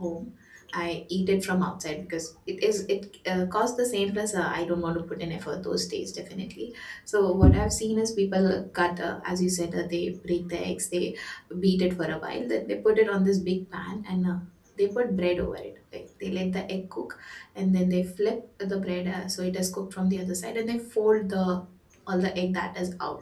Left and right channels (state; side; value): identical; both; correlation 1.00